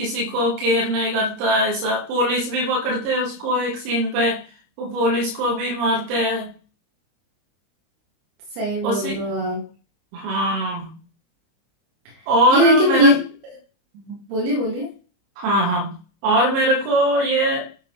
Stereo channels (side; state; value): left; late; 28 ms